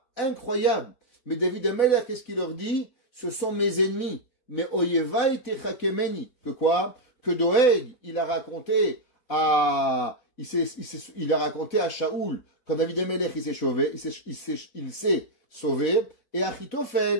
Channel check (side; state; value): right; late; 4.5 ms